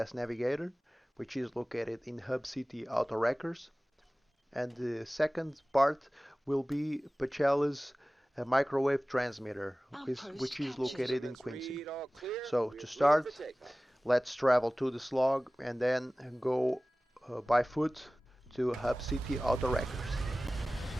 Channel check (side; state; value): both; normal; correlation 0.97